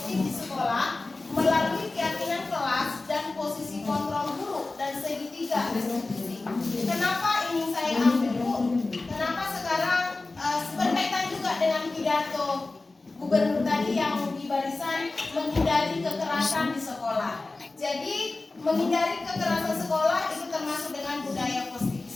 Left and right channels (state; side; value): quieter; right; 3.3 dB